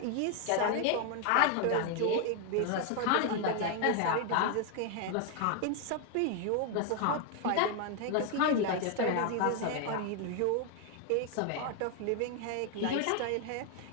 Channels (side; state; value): both; different; correlation 0.00